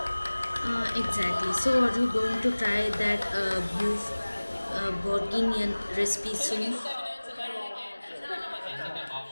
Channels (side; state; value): both; inverted; correlation -1.00